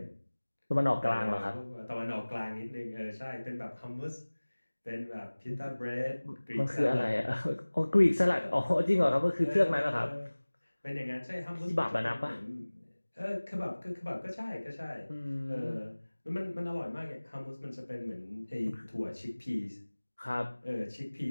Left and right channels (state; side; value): inverted; both; correlation -1.00